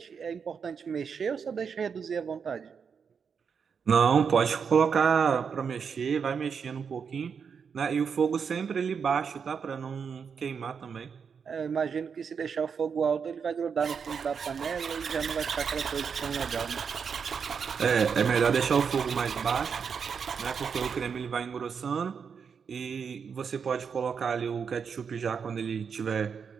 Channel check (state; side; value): quieter; left; 6.4 dB